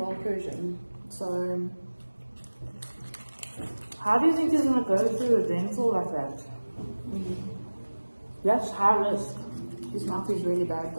Persian. So, How do you think he's gonna go through a dental like that? That's high risk. his mouth is really bad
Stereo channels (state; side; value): inverted; both; correlation -1.00